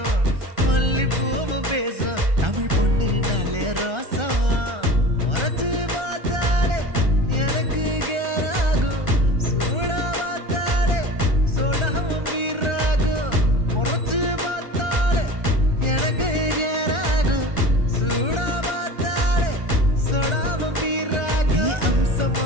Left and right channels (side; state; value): left; late; 1.3 ms